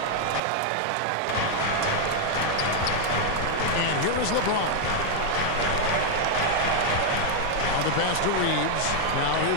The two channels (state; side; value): different; both; correlation 0.00